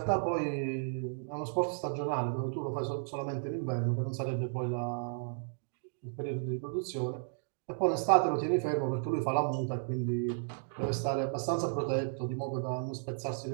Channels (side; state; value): left; silent; digital silence